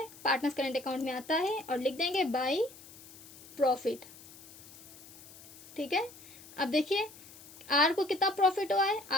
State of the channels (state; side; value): noise; left; hiss, 19 dB below the sound